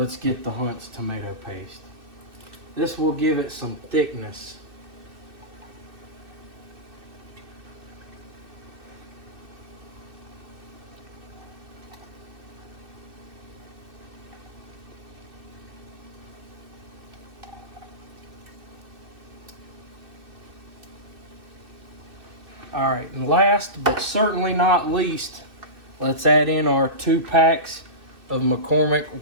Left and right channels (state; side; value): late; left; 2.6 ms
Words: get the Hunt's tomato paste. This will give it some thickness. All right, and last but certainly not least, let's add in our 2 packs of McCormick